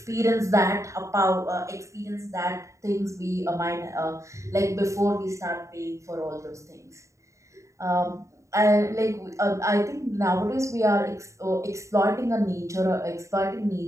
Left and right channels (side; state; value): left; late; 0.15 ms